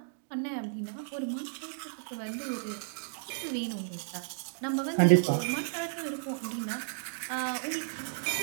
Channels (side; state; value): left; silent; digital silence